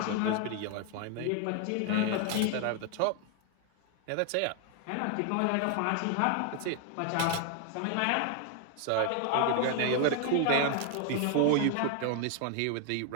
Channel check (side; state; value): both; different; correlation 0.00